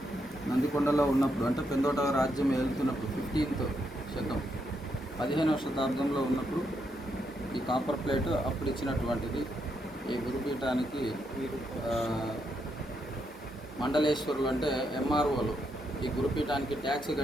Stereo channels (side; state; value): both; normal; correlation 0.79